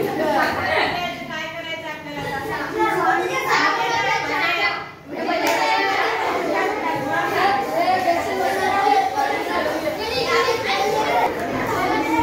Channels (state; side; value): identical; both; correlation 1.00